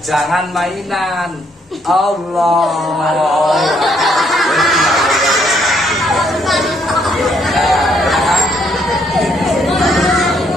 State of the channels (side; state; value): both; normal; correlation 0.70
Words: jangan mainan. Allah.